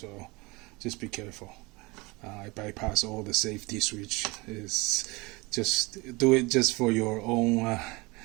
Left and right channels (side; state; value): left; quieter; 24.9 dB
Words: just be careful. I bypass all the safety switch. Is just do it just for your own